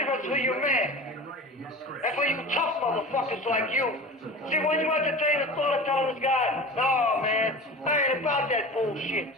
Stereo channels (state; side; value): normal; both; correlation 0.34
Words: for your man. And for you tough motherfuckers like you. See, when you entertain the thought of telling this guy, no, man, I ain't about that bullshit.